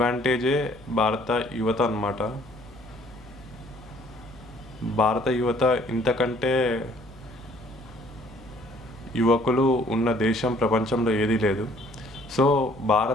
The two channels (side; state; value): left; noise; hum, 23 dB below the sound